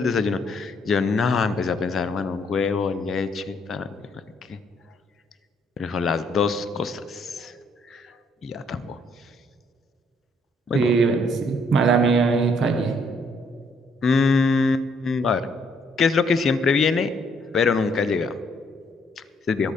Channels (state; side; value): normal; both; correlation 0.68